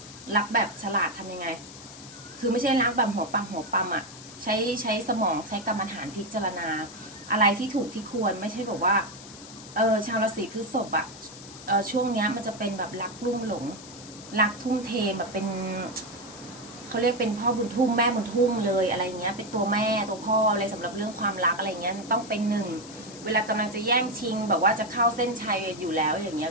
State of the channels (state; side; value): noise; left; hiss, 16 dB below the sound